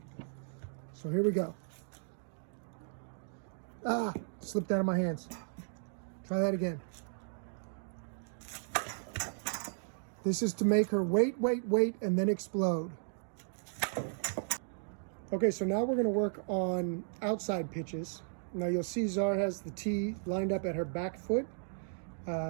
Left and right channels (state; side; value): silent; left; digital silence